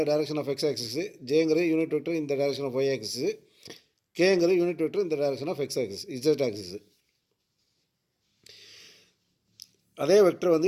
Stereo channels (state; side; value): identical; both; correlation 1.00